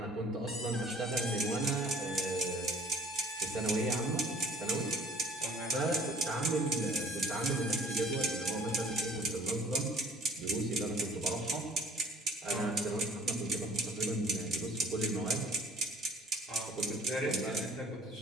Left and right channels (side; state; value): both; normal; correlation 0.53